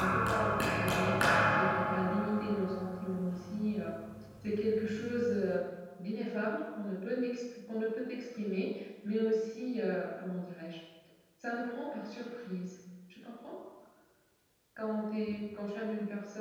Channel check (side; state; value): both; identical; correlation 1.00